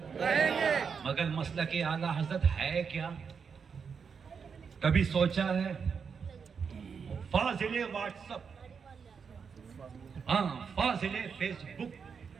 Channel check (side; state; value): left; quieter; 6.1 dB